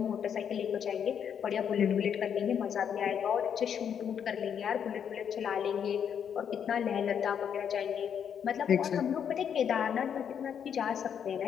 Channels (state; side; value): quieter; right; 8.1 dB